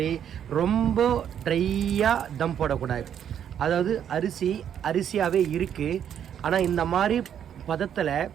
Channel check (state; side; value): quieter; left; 9.2 dB